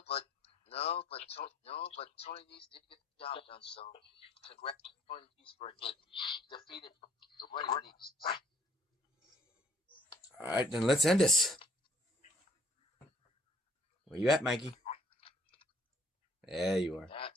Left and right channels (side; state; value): both; normal; correlation 0.60